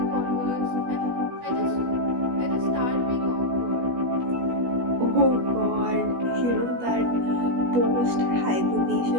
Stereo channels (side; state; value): left; late; 16 ms